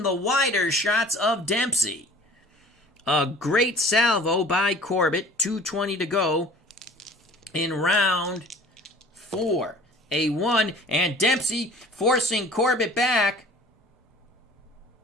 the wider shots of Dempsey. A great salvo by Corbett. 2:20 to go in round 4. A 1, and Dempsey forcing Corbett back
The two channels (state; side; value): normal; both; correlation 0.47